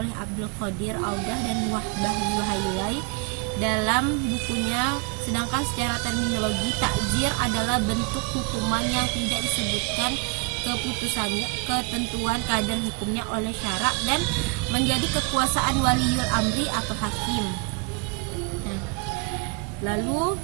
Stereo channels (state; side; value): quieter; left; 31.8 dB